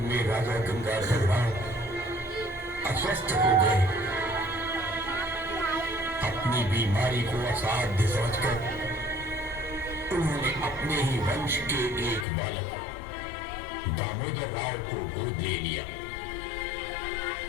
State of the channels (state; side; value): drops out; right; at 12.2 s